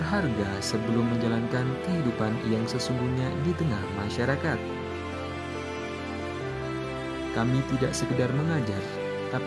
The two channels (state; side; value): identical; both; correlation 1.00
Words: sebelum menjalankan kehidupan yang sesungguhnya di tengah masyarakat. Kami tidak sekedar mengajar,